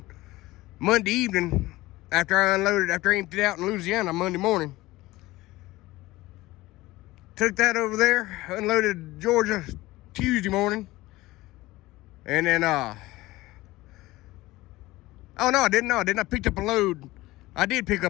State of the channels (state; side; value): quieter; right; 18.7 dB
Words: Monday evening after I unloaded, after I emptied out in Louisiana Monday morning. Took that over there, unloaded Georgia Tuesday morning, and then oh no, I didn't. I picked up a load. I did pick